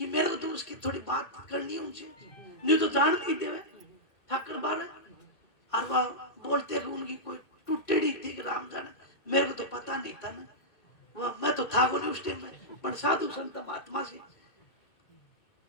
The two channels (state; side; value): late; right; 2.1 ms